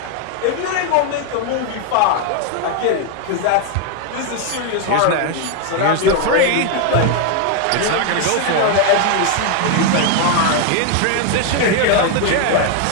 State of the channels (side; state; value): both; different; correlation 0.01